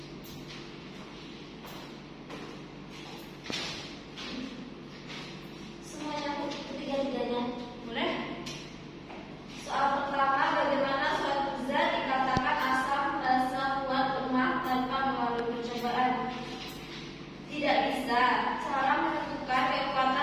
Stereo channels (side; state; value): both; identical; correlation 1.00